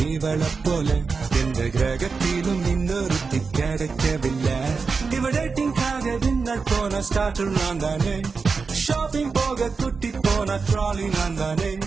இவளை போல எந்த கிரகத்திலும் இன்னொருத்தி கிடைக்கவில்லை. இவ டேட்டிங்காக டின்னர் போன ஸ்டார்டர் நான் தானே, ஷாப்பிங் போக குட்டி போன ட்ராலி நான் தானே,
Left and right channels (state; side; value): quieter; left; 4.8 dB